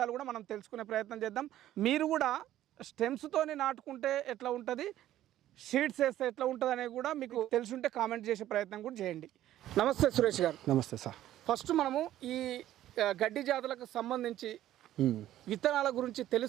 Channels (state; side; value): quieter; left; 13.1 dB